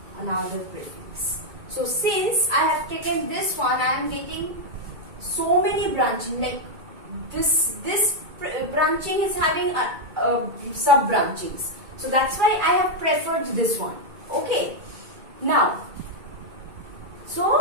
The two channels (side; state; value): left; late; 2.2 ms